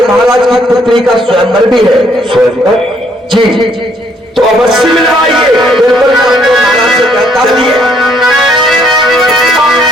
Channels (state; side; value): normal; both; correlation 0.67